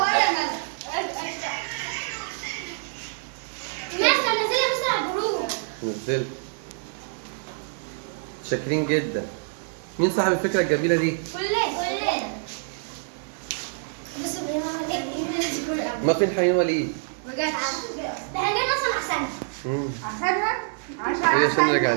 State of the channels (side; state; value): left; silent; digital silence